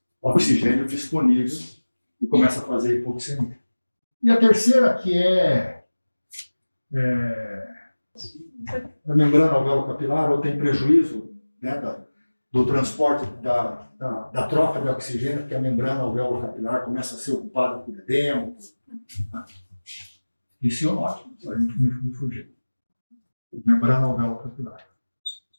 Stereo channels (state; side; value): inverted; both; correlation -1.00